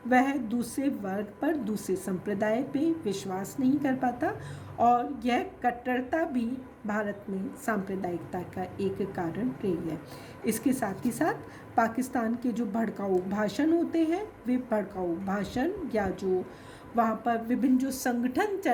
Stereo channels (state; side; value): identical; both; correlation 1.00